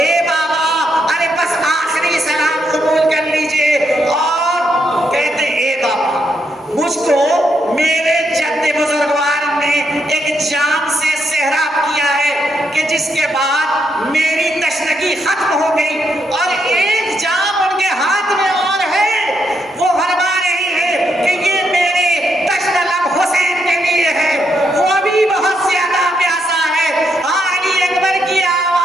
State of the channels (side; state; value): both; normal; correlation 0.78